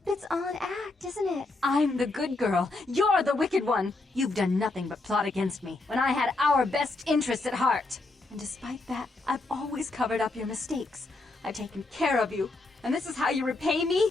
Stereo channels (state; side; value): quieter; right; 3.2 dB